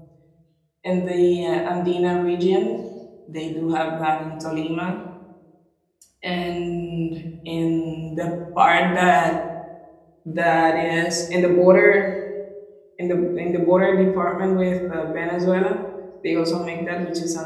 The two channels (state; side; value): identical; both; correlation 1.00